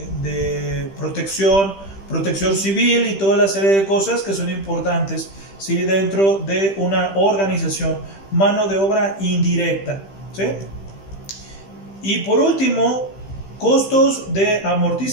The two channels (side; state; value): right; late; 15 ms